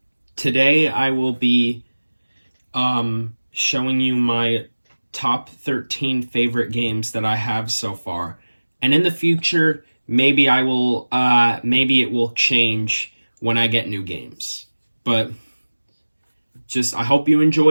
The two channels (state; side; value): inverted; both; correlation -1.00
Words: today I will be showing you my top 13 favorite games that I have so far. And in the future, maybe maybe it will change when I get new games. But I hope you